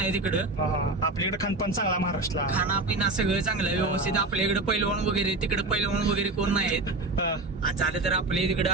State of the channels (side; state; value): left; quieter; 3.1 dB